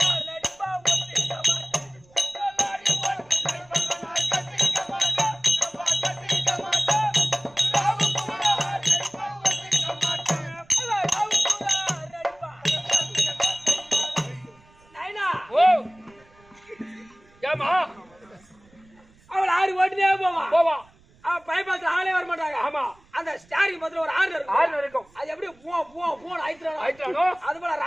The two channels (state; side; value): noise; right; rumble, 29 dB below the sound